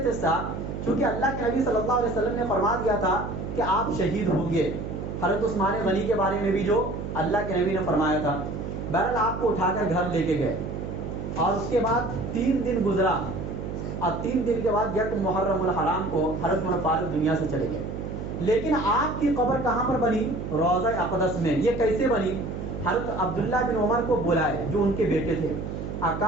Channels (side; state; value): right; noise; hum, 6 dB below the sound